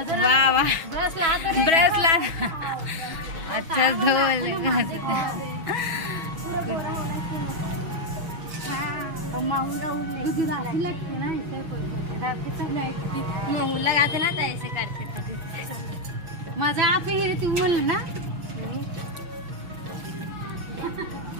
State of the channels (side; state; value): left; late; 6.2 ms